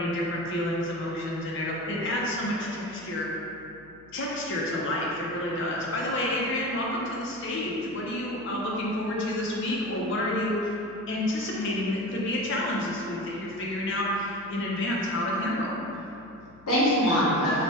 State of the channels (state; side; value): noise; left; hum, 26 dB below the sound